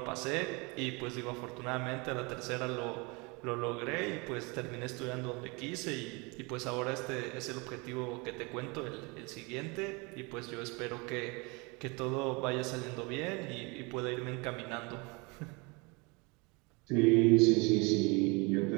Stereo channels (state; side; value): quieter; left; 28.4 dB